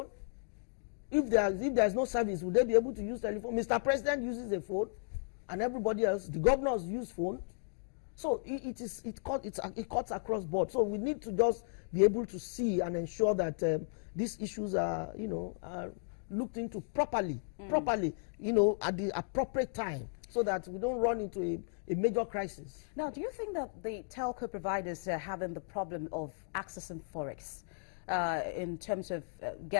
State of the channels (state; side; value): silent; right; digital silence